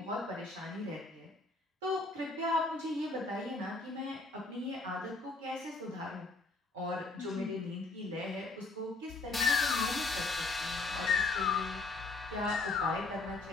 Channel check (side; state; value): right; quieter; 3.4 dB